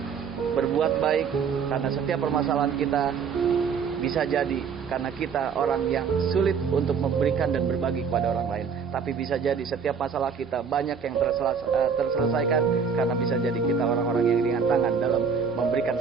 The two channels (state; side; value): quieter; left; 6.2 dB